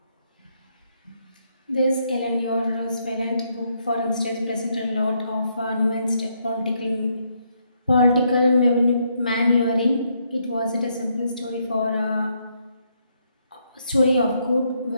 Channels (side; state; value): both; inverted; correlation -0.75